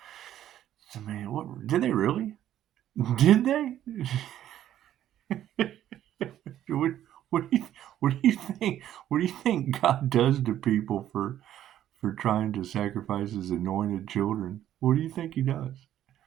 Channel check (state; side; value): quieter; left; 11.7 dB